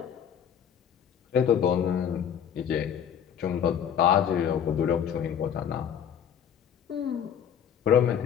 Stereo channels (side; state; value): right; quieter; 8.5 dB